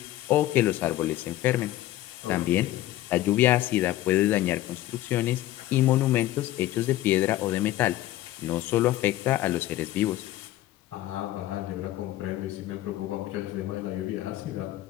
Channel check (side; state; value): right; quieter; 14.9 dB